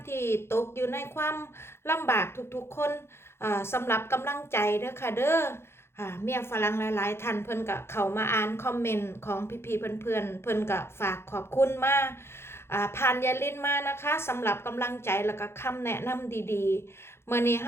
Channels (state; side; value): late; right; 0.12 ms